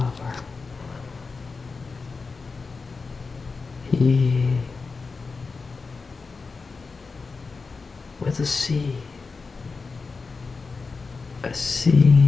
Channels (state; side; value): quieter; right; 4.4 dB